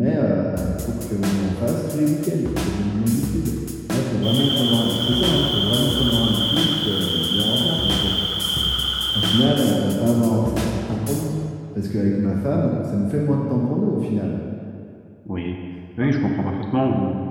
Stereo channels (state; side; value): identical; both; correlation 1.00